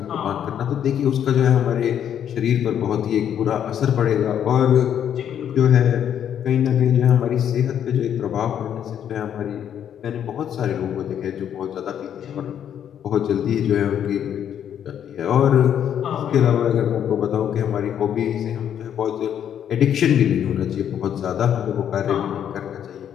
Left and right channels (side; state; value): right; quieter; 9.4 dB